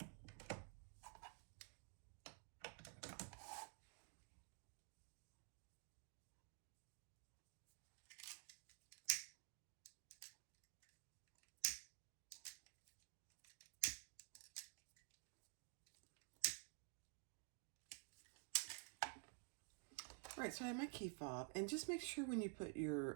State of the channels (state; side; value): quieter; left; 37.3 dB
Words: All right, so I have my key fob, and just make sure when you put